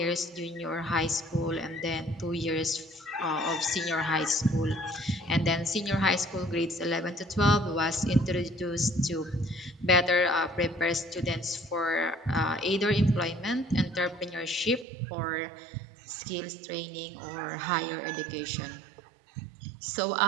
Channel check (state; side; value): drops out; left; at 14.9 s